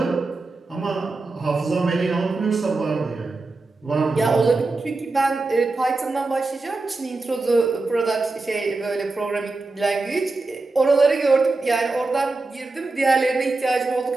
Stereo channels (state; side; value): quieter; left; 3.4 dB